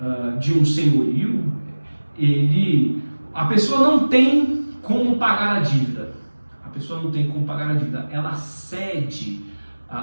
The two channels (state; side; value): inverted; both; correlation -1.00